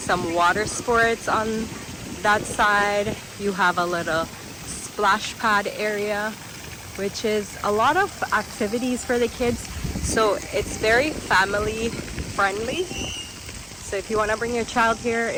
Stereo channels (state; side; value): identical; both; correlation 1.00